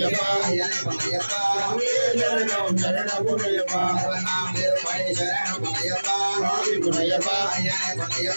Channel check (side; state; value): both; inverted; correlation -1.00